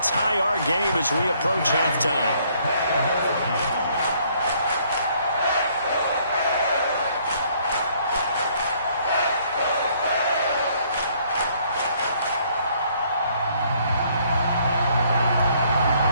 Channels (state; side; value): inverted; both; correlation -0.65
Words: tie our game as we approach halftime.